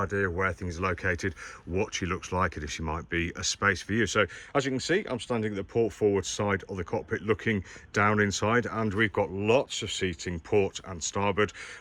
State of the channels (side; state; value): both; identical; correlation 1.00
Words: of where things are located, what she looks like and if she might be a space for you. So as you can see, I'm standing at the port forward side of the cockpit looking down inside, and we've got lots of seating port and starboard.